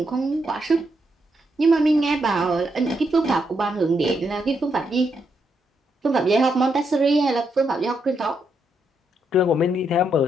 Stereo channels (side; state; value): both; normal; correlation 0.79